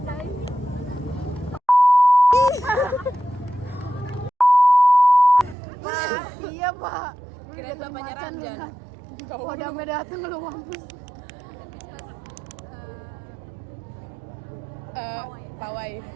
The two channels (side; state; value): left; drops out; at 5.6 s